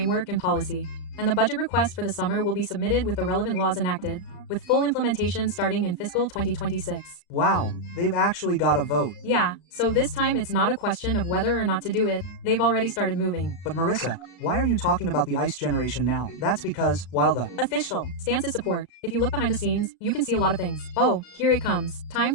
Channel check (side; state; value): right; late; 35 ms